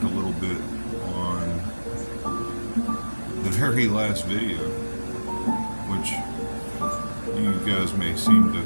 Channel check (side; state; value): both; inverted; correlation -1.00